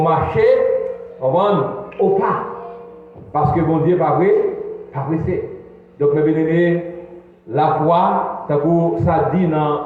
au pas. Parce que bon Dieu n'est pas pressé. Donc, mes bien-aimés, la foi, ça dit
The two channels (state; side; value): identical; both; correlation 1.00